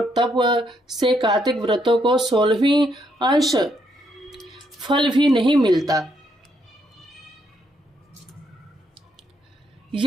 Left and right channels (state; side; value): normal; both; correlation 0.74